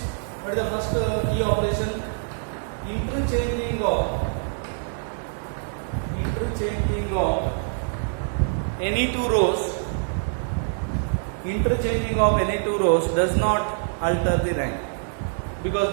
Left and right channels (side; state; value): left; silent; digital silence